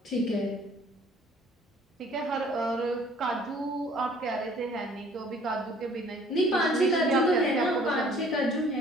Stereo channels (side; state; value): both; normal; correlation 0.55